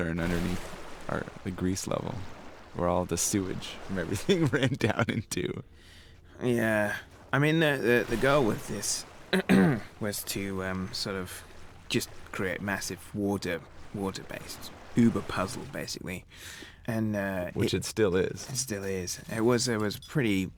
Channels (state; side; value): identical; both; correlation 1.00